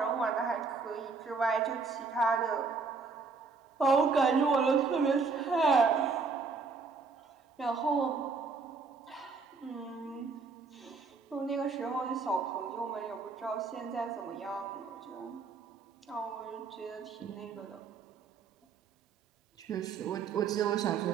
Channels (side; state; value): left; quieter; 4.7 dB